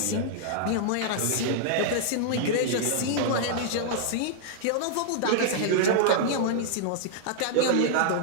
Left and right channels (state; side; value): different; both; correlation -0.01